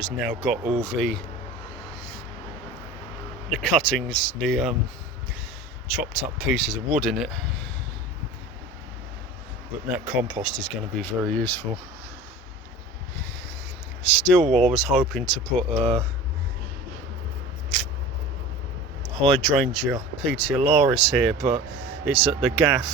now got all the cuttings, the chopped up pieces of wood in it. But that compost is going to be very useful. Still, I was hoping to put hydrangea petiolaris here, but it's at the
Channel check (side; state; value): both; normal; correlation 0.37